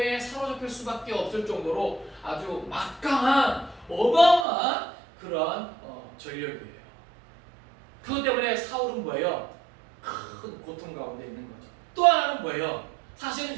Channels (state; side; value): drops out; left; at 4.5 s